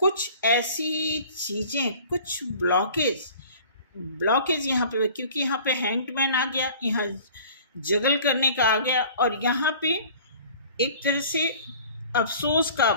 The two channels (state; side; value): inverted; both; correlation -0.47